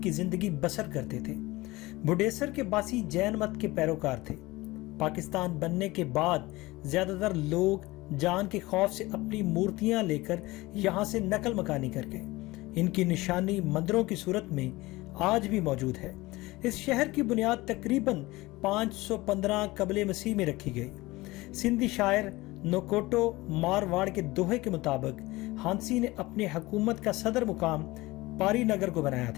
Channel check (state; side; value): quieter; right; 20.4 dB